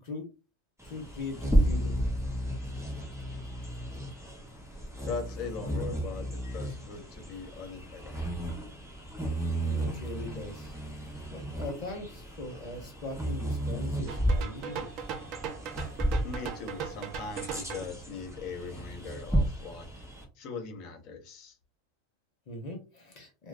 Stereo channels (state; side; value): normal; both; correlation 0.71